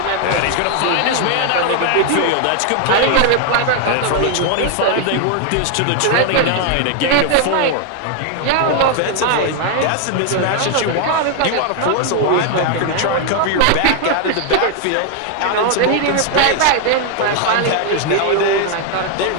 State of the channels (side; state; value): both; different; correlation 0.00